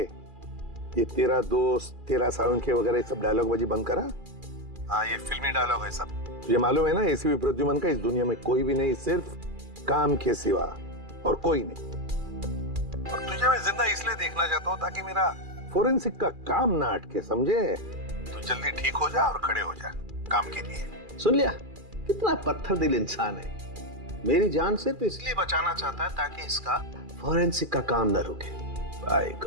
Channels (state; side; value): late; left; 2.4 ms